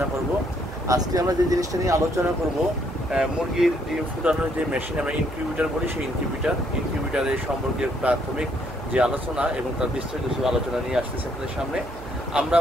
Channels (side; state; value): right; noise; hum, 13 dB below the sound